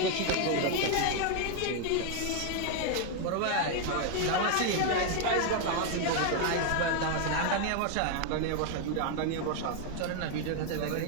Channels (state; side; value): different; both; correlation 0.00